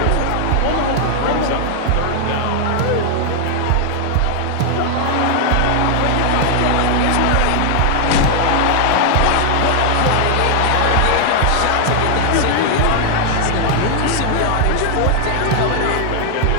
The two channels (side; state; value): both; different; correlation 0.00